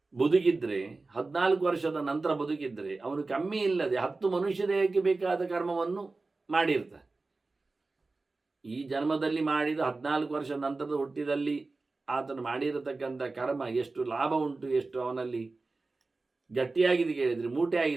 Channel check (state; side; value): quieter; left; 3.6 dB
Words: ಬದುಕಿದ್ರೆ, 14 ವರ್ಷದ ನಂತರ ಬದುಕಿದ್ರೆ, ಅವನು ಕಮ್ಮಿ ಇಲ್ಲದೆ 10 ಮನುಷ್ಯ ದೇಹಕ್ಕೆ ಬೇಕಾದ ಕರ್ಮವನ್ನು ಮಾಡಿರ್ತಾನೆ. ಈ ಜನ್ಮದಲ್ಲಿ ಮಾಡಿದ 14 ವರ್ಷ ನಂತರದ ಹುಟ್ಟಿದಲ್ಲಿ ಆತನು ಮಾಡಿರತಕ್ಕಂಥ ಕರ್ಮ ಎಷ್ಟು ಲಾಭ ಉಂಟು, ಎಷ್ಟು ಅವನಲ್ಲಿ ಗಟ್ಟಿಯಾಗಿದೆ ಕೇಳಿದರೆ, ಮೂಟೆ